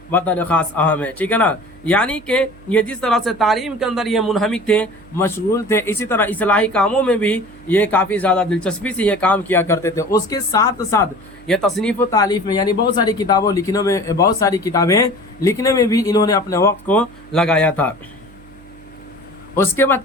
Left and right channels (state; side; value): noise; right; hum, 23 dB below the sound